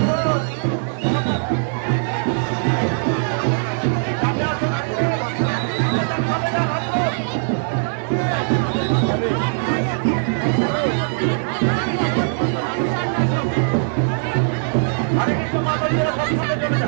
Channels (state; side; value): silent; left; digital silence